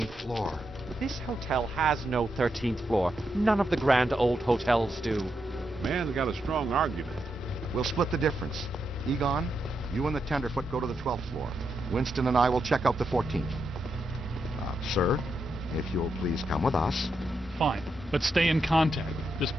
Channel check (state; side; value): normal; both; correlation 0.84